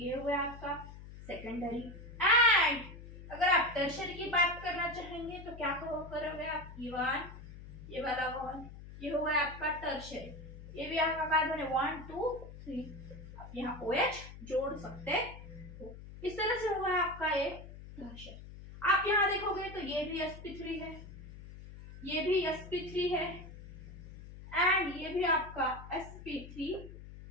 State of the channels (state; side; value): noise; left; hum, 14 dB below the sound